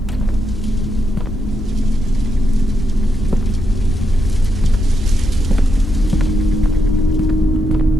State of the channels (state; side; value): normal; both; correlation 0.82